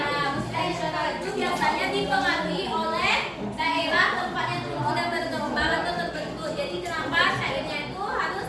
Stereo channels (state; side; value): identical; both; correlation 1.00